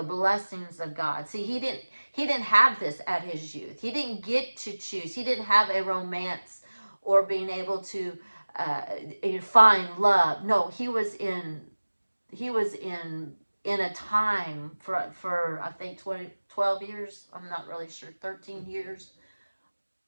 blessings of God. See, he didn't have this at his youth. He didn't get to choose. He didn't have a romance or being able to find love. No, he was in a time for I think 12 years. I'm not really sure, 13 years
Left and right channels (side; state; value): both; inverted; correlation -1.00